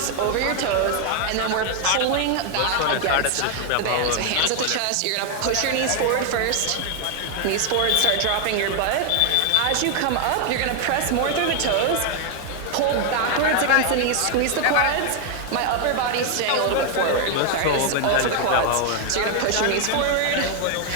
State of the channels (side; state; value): both; different; correlation 0.00